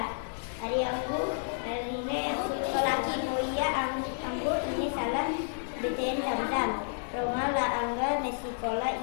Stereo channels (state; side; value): silent; right; digital silence